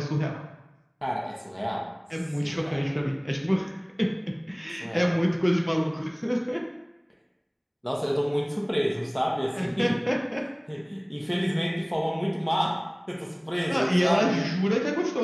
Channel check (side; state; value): both; identical; correlation 1.00